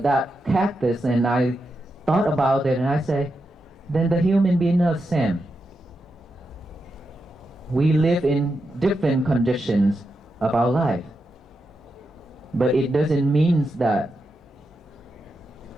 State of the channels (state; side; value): normal; both; correlation 0.87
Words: that cactus and I thought about it, and I say, then the human being are the same. We live in different conditions of our life. But it doesn't mean that